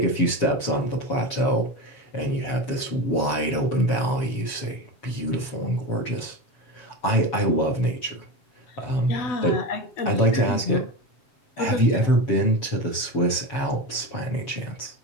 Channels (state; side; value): late; right; 7.2 ms